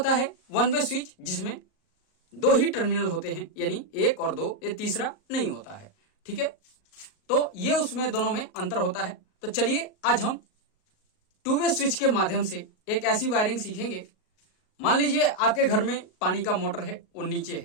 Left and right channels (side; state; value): right; late; 38 ms